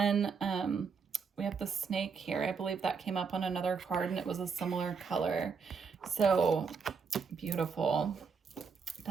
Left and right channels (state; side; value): quieter; left; 5.6 dB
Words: we have the snake here. I believe that came up on another card and it was a similar color. So beautiful.